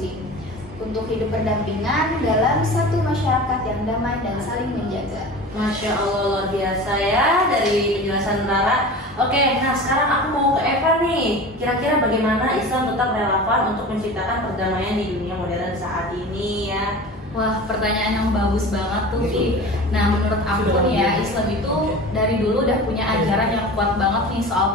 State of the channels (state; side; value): normal; both; correlation 0.35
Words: untuk hidup berdampingan dalam satu masyarakat yang damai dan saling menjaga. Masya Allah, luar biasa ya dari penjelasan Rara. Oke, nah sekarang aku mau ke Eva nih. Kira-kira bagaimana Islam tetap relevan untuk menciptakan perdamaian di dunia modern saat ini ya? Wah, pertanyaan yang bagus banget tuh, Vi. Nah, menurut aku nih ya, Islam itu dari dulu udah punya ajaran yang kuat banget nih